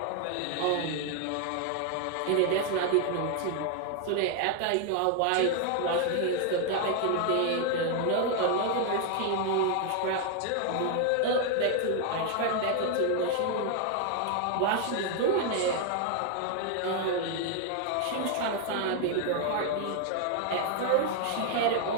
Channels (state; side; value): different; both; correlation 0.00